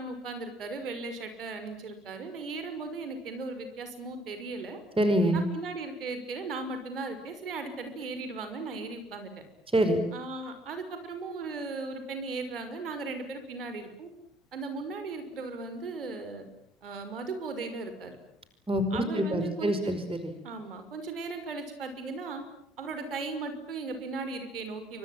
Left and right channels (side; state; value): both; normal; correlation 0.62